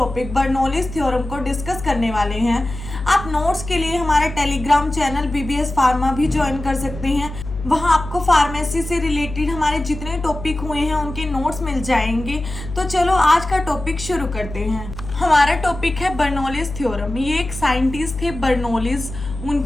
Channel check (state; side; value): noise; left; hum, 10 dB below the sound